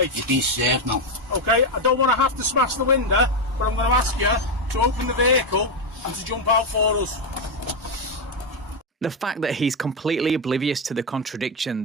You've been served now. Okay, I don't want to have to smash the window, but I'm going to ask you to open the vehicle and to jump out for us. The fact that he's completely oblivious to the contradiction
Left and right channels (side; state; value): both; normal; correlation 0.06